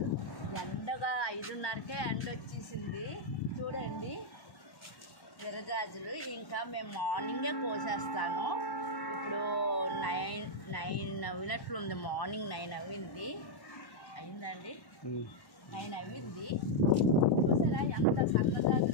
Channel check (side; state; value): right; late; 1.1 ms